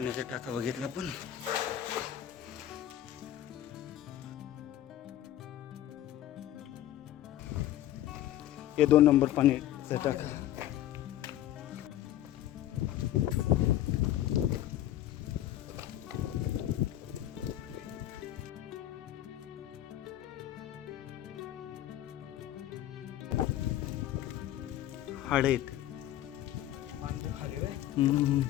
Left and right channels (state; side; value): quieter; right; 12.7 dB